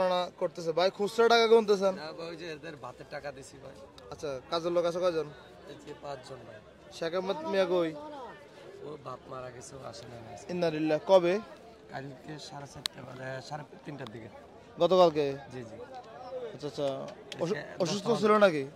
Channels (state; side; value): identical; both; correlation 1.00